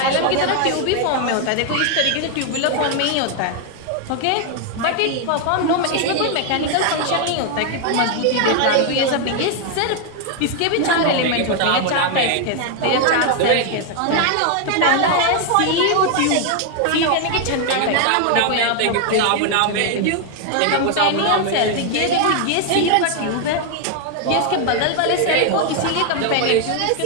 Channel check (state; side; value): different; both; correlation 0.00